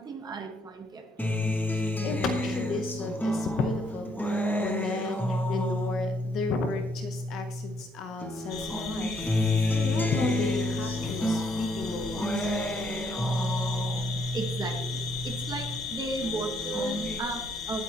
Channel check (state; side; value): normal; both; correlation 0.70